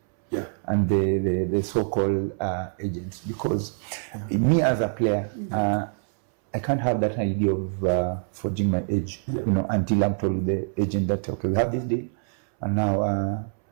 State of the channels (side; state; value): left; silent; 62 dB below the other